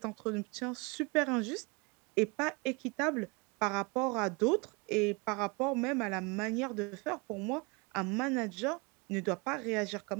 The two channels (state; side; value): quieter; left; 28.9 dB